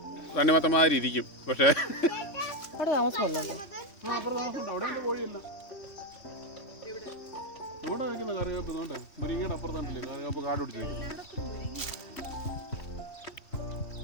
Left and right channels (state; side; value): late; right; 3.1 ms